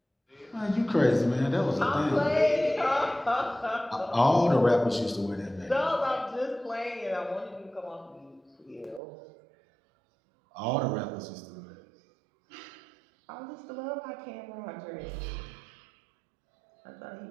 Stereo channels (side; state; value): left; drops out; at 9.0 s